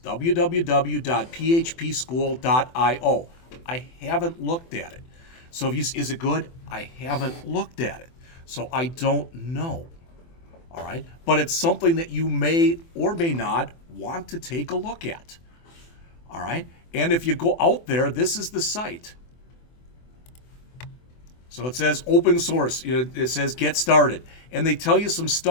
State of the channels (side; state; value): right; late; 24 ms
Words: www.phpschool.io. I haven't looked at it. So is it good? I haven't looked at it. So I don't know. All right? But it's something that you may or may not want to take a look at. All right? And if you go out there, this is the site. So it says open source. It says get started. And they tell you some